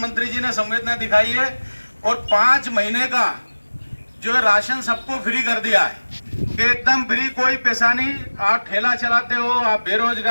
जी ने संवेदना दिखाई है और 5 महीने का जो है राशन सबको फ्री कर दिया है कि एकदम फ्री, कोई पैसा नहीं। आप ठेला चलाते हो, आप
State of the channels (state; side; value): inverted; both; correlation -1.00